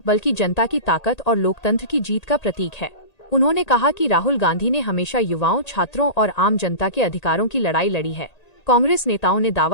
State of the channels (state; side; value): late; right; 1.8 ms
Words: बल्कि जनता की ताकत और लोकतंत्र की जीत का प्रतीक है। उन्होंने कहा कि राहुल गांधी ने हमेशा युवाओं, छात्रों और आम जनता के अधिकारों की लड़ाई लड़ी है। कांग्रेस नेताओं ने